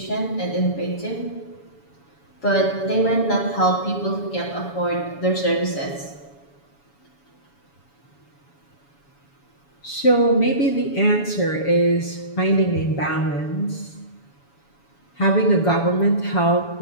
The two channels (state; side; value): late; right; 7.1 ms